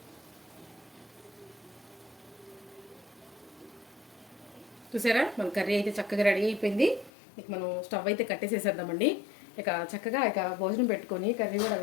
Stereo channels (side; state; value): right; drops out; at 7.1 s